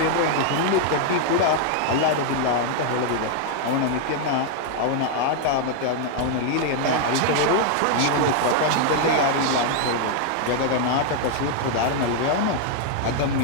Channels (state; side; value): different; both; correlation 0.00